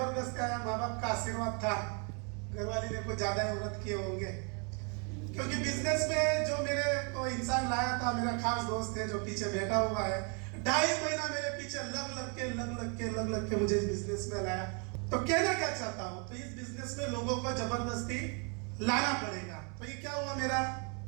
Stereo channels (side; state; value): left; quieter; 36.4 dB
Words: आया, माँ बाप का आशीर्वाद था, घर वाले ने कुछ ज्यादा व्रत किए होंगे, क्योंकि बिजनेस में जो मेरे को इंसान लाया था, मेरा खास दोस्त है जो पीछे बैठा हुआ है, 2.5 महीना मेरे पीछे लग लग के मुझे इस बिजनेस में लाया। तो कहना क्या चाहता हूं, तो इस बिजनेस में लोगों को जबरदस्ती लाना पड़ेगा। तो ये क्या हुआ, मेरा